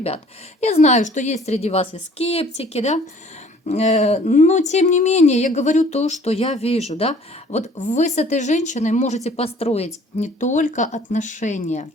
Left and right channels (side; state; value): both; normal; correlation 0.54